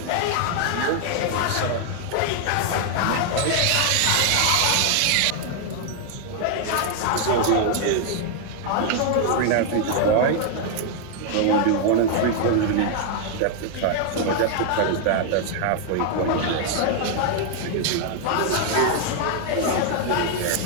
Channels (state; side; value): different; both; correlation 0.00